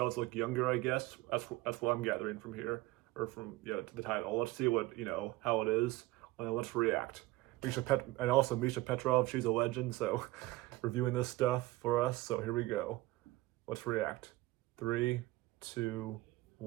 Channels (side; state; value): left; quieter; 18.9 dB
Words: look younger, I guess. That's what I'm gathering from here, or from to the title. Let's see what how it is, and let's react. And also Misha Petrov, she's a legend, so reviewing this stuff for us. So here we go. Let's react. 3, 2,